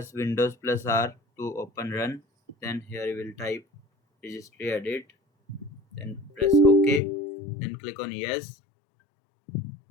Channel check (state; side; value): drops out; right; at 7.0 s